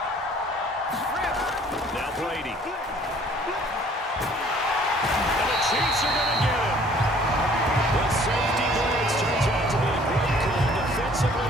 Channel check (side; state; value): both; normal; correlation 0.56